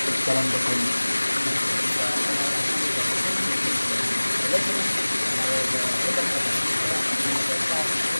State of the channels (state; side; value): inverted; both; correlation -1.00